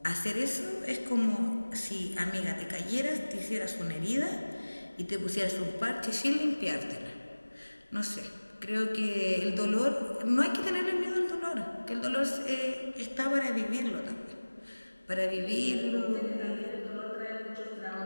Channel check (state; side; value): inverted; both; correlation -1.00